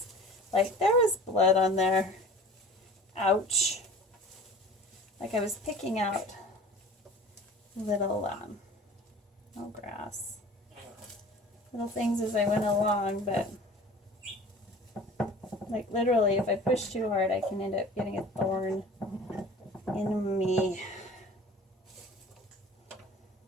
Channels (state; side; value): normal; both; correlation 0.43